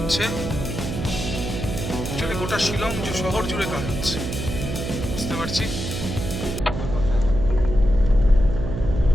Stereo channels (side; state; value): right; noise; hum, 5 dB below the sound